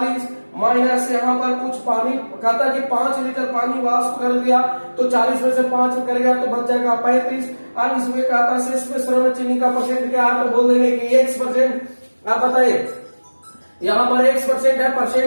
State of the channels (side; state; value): both; inverted; correlation -1.00